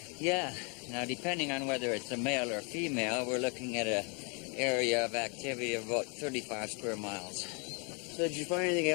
Yeah. Now, depending on whether it's a male or female, we're looking at an area of activity of about 35 square miles. So did you find anything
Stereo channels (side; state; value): right; quieter; 35.3 dB